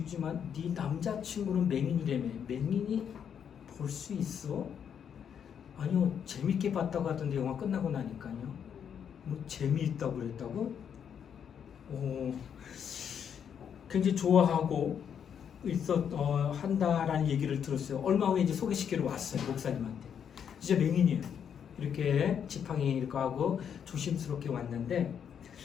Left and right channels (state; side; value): quieter; right; 8.0 dB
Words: 네 남자친구는 맹인이라며. 맹인이 볼 수 있어? 아니요, 재밌게 봤다고 하던데 영화 끝나고 나니까요. 뭐 재미있다고 그랬다고? 굉장히 좋아하고 한다라는 얘기를 들었어요. 얼마 후에 이제 소개시키러 왔어요, 목사님한테. 진짜 맹인이에요. 이렇게 지팡이 이렇게 하고 조심스럽게 왔는데,